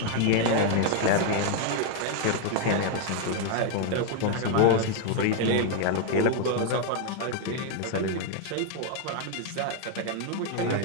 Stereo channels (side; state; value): both; different; correlation 0.00